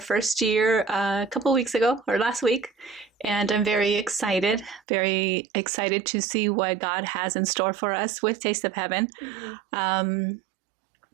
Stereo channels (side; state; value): left; drops out; at 4.8 s